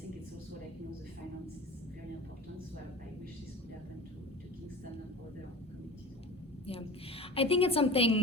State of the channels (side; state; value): both; normal; correlation 0.37